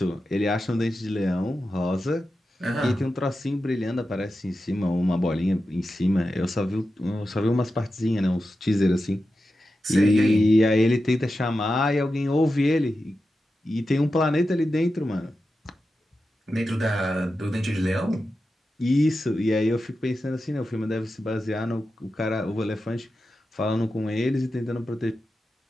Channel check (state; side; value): normal; both; correlation 0.91